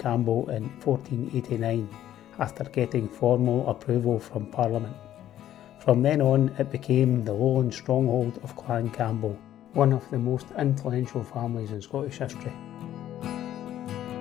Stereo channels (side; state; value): right; quieter; 12.0 dB